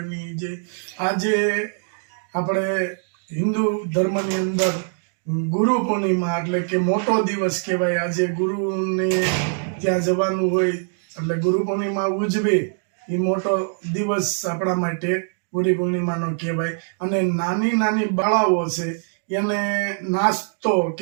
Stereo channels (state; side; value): silent; left; 56 dB below the other